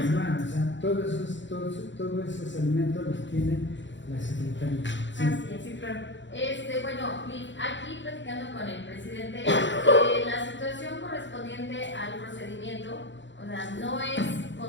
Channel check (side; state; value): right; late; 0.54 ms